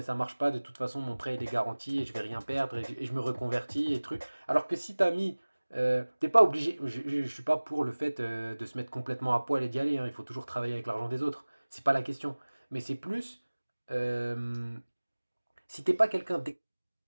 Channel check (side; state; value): both; inverted; correlation -1.00